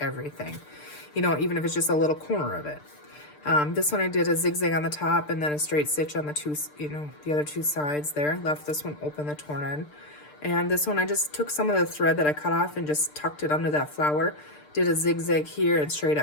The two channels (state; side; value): late; right; 6.7 ms